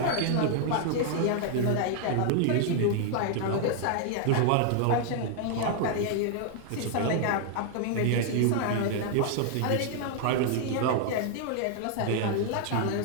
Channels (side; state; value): both; different; correlation 0.00